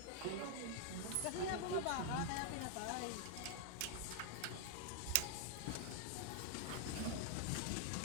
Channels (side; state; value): both; different; correlation 0.00